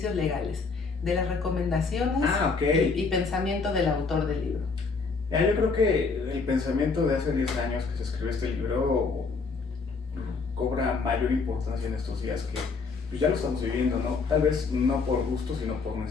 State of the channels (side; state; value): right; quieter; 4.5 dB